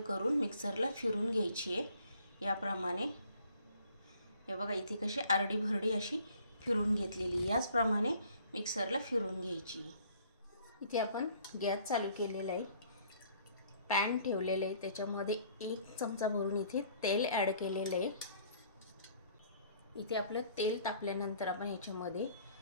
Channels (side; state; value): both; inverted; correlation -0.58